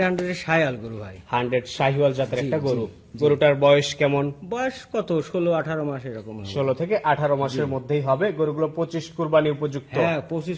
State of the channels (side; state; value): both; identical; correlation 1.00